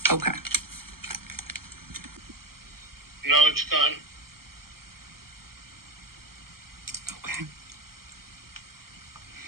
Okay. No, it's gone. Okay.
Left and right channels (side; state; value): left; late; 0.93 ms